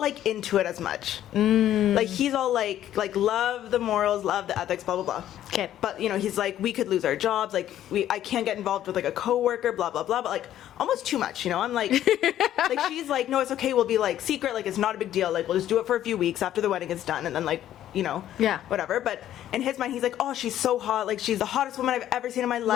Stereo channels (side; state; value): right; quieter; 11.9 dB